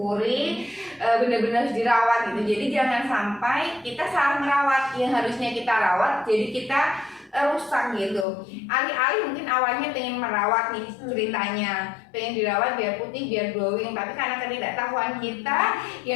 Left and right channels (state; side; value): drops out; right; at 8.2 s